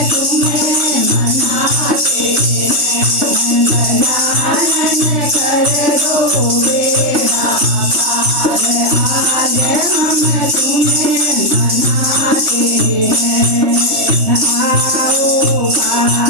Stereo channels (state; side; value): late; left; 3.2 ms